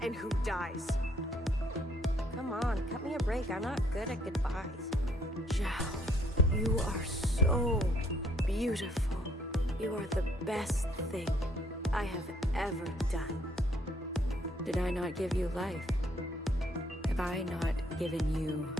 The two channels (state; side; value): normal; both; correlation 0.67